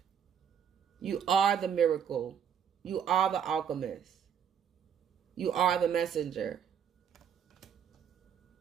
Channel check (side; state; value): left; quieter; 8.2 dB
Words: You are the miracle. You are the alchemist. You are the messenger.